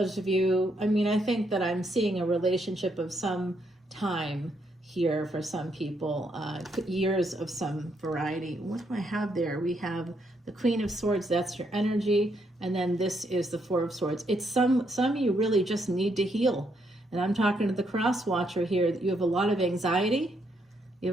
of you, I mean, I think that I'm seeing a relationship of some time here for some people, years of some variety. What do I have there? We have the Queen of Swords, that's your energy, and then this is the Four of Swords. It's some of you really just need to heal. And I'm talking to the cross watcher here, that you have a lot of anxiety. You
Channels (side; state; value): both; normal; correlation 0.75